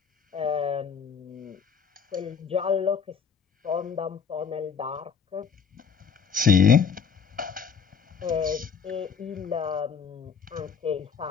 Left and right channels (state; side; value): quieter; right; 6.5 dB